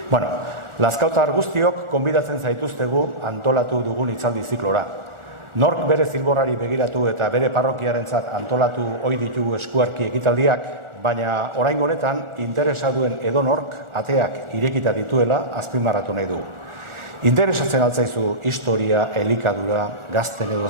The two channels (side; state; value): left; late; 1.4 ms